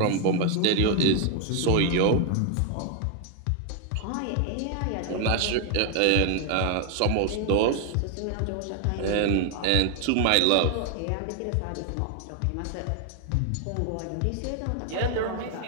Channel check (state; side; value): different; both; correlation 0.00